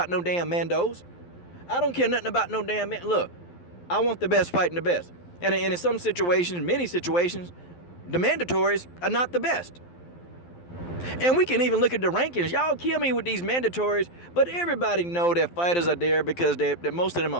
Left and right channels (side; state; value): right; late; 12 ms